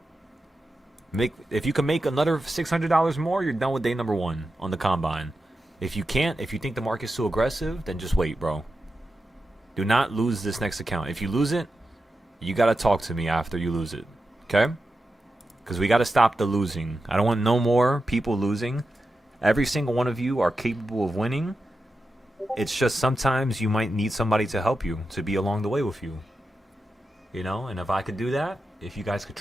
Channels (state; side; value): normal; both; correlation 0.90